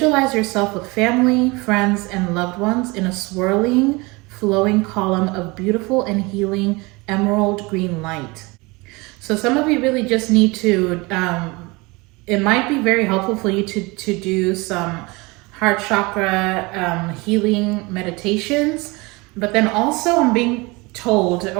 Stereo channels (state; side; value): quieter; left; 25.1 dB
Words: yourself with family, friends, and loved ones in a swirling, flowing column of beautiful and healing emerald green light. So some of you really just need to, it might be very helpful for you to do some heart chakra healing meditations, but then also I'm being told,